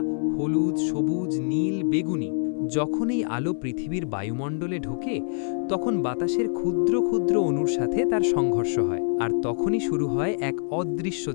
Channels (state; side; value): silent; right; 59 dB below the other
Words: হলুদ, সবুজ, নীল, বেগুনি। যখন এই আলো পৃথিবীর বায়ুমণ্ডলে ঢোকে, তখন বাতাসের ক্ষুদ্র ক্ষুদ্র অণুর সাথে তার সংঘর্ষ হয়, আর তখনই শুরু হয় এক অদৃশ্য